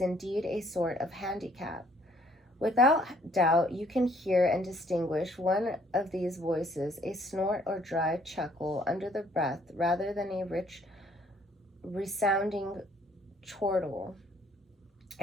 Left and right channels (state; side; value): normal; both; correlation 0.63